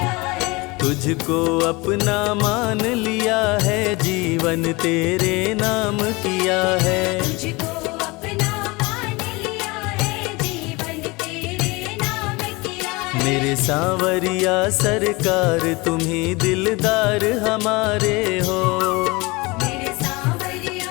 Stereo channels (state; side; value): quieter; right; 24.7 dB